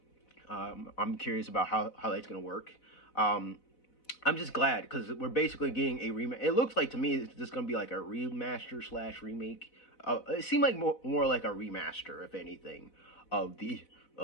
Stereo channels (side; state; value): right; late; 4.0 ms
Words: curious about how that's going to work. I'm just glad because we're basically getting a remake. It looks like to me it's just going to be like a remaster / remake. It seemed like more like a remaster, if anything, of the